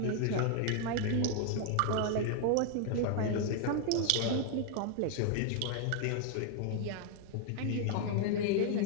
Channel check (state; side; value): different; both; correlation 0.00